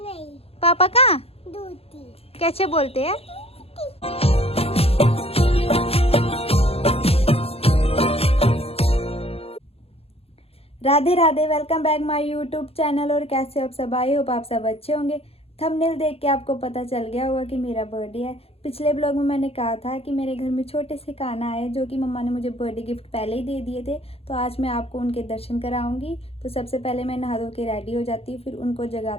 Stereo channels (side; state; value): right; late; 0.29 ms